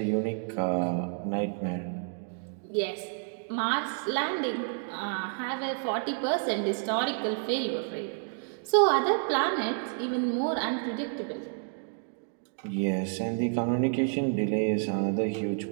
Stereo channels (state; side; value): silent; left; 58 dB below the other